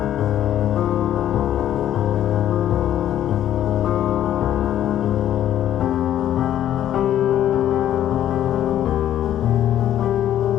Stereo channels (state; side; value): quieter; right; 11.5 dB